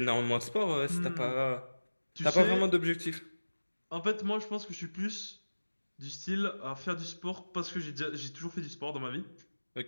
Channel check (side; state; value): both; inverted; correlation -1.00